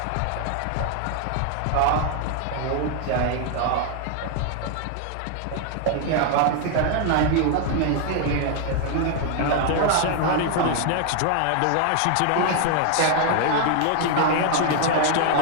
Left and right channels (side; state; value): both; different; correlation 0.00